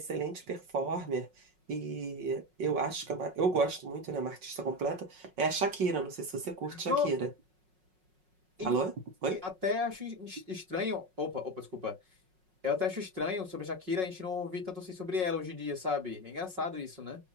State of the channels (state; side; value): late; left; 5.4 ms